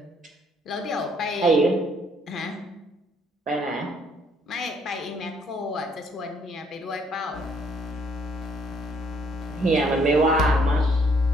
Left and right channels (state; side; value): normal; both; correlation 0.66